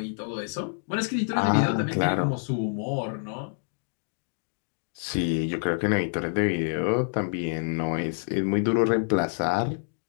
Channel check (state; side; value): silent; right; digital silence